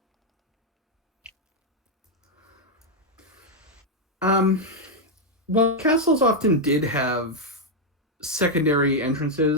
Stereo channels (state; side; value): normal; both; correlation 0.00